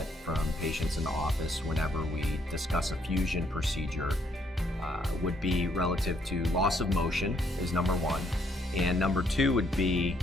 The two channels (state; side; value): normal; both; correlation 0.69